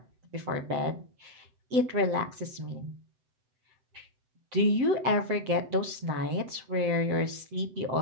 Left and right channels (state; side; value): late; left; 7.9 ms